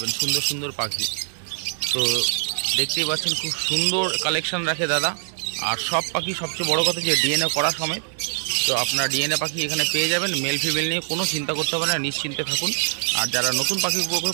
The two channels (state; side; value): silent; left; digital silence